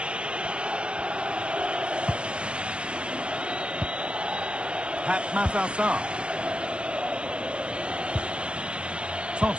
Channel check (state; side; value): late; left; 0.052 ms